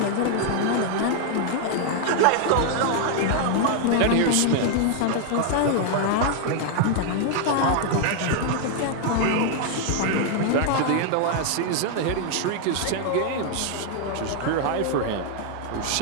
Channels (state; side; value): different; both; correlation 0.00